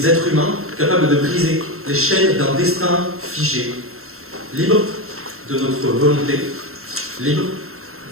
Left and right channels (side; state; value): left; late; 0.62 ms